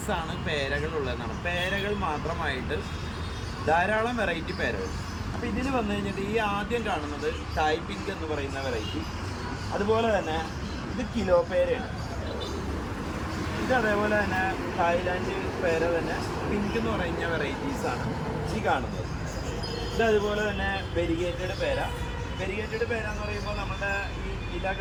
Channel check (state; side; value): identical; both; correlation 1.00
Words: പേരകളുള്ളതെന്നാണ്. പേരകൾ മാത്രമായിട്ട് ധാരാളം വെറൈറ്റി പേരകൾ. അപ്പോൾ ഇതിൽ വന്നു കഴിഞ്ഞിട്ട് ഈ ആദ്യം കാണുന്നത് തായ് പിങ്ക് എന്ന് പറയുന്ന വെറൈറ്റി. അതുപോലെ തന്നെ ഇത് കിലോ പേരയാണ്. ഇത് അതേപോലെ തന്നെ തായ്ലാൻഡ് പേര തന്നെ പിങ്ക് എന്ന് പറയുന്ന വെറൈറ്റീസാണ് ഈ കാണുന്നത്. ഇത് അതുപോലെ തന്നെ വെരിഗേറ്റഡ് പേര. വെരിഗേറ്റഡ് പേര എന്ന് പറയുമ്പോൾ നമ്മുടെ ഈ